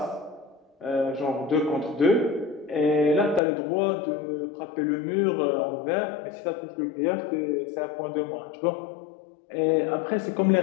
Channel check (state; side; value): drops out; right; at 3.4 s